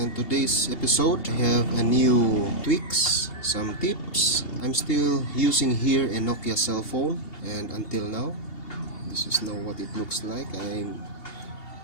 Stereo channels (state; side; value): late; right; 2.8 ms